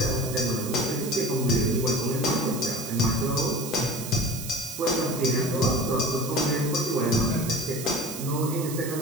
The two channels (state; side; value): noise; right; hiss, 10 dB below the sound